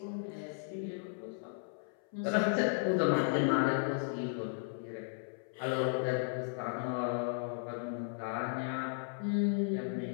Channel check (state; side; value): silent; right; 54 dB below the other